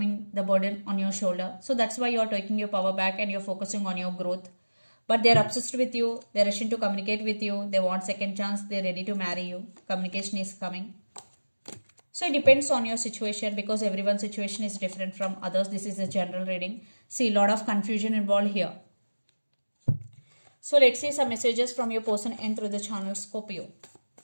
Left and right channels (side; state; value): both; inverted; correlation -1.00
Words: the burden on your shoulder. So that's why you're taking your power back and you're focusing on your growth. But they're obsessed with you. They're rushing to communicate with you. They want second chance. They're ready to marry you. Communication is coming. So it depends on your situation because everyone's situation is different from others. This is a general reading. See, a lot of confusion involved here. So let's see some messages from your person and through the channel, Scorpio.